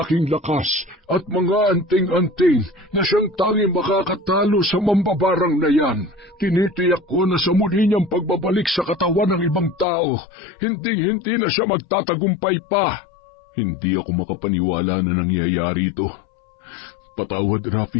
lakas at mga anting-anting na siyang tanging makakatalo sa mambabarang na yan. Tinitiyak ko na sa muli niyang pagbabalik sa katawan ng ibang tao, hindi na siya magtatagumpay pa. Hindi ako makapaniwala na nangyayari ito. Patawad,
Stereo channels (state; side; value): drops out; right; at 9.9 s